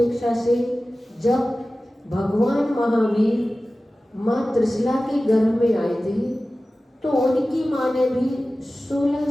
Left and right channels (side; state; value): both; normal; correlation 0.96